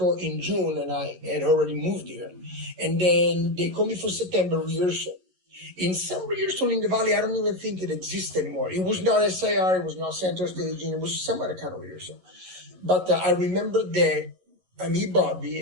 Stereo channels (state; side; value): late; left; 11 ms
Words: in June, and I had already moved here. And then they called me for September rehearsal. In some rehearsal in the Valley, I don't even think it exists anymore. It was not SIR, it was not center staging, it was some other kind of rehearsal. But I remember that me, Bobby,